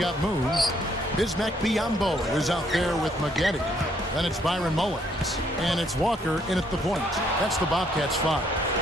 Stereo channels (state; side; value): normal; both; correlation 0.69